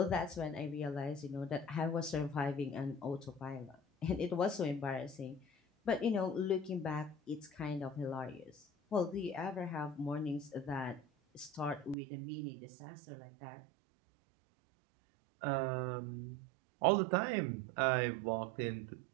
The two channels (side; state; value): left; drops out; at 12.0 s